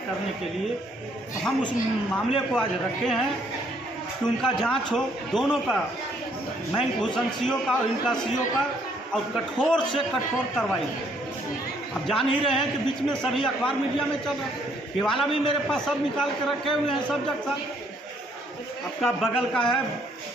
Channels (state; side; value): normal; both; correlation 0.67